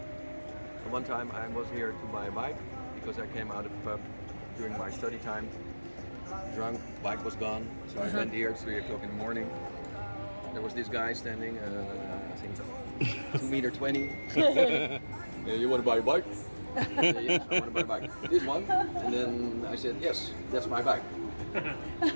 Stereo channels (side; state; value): both; inverted; correlation -1.00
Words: one time I was here to buy a bike because I came out of the pub during my study time, drunk, bike was gone, so I went here at 3 o'clock in the morning. There was this guy standing, I think 2.20 meters. You want to buy a bike? Yes, I want to buy a bike. This one? And then I said, yes, that's my bike. you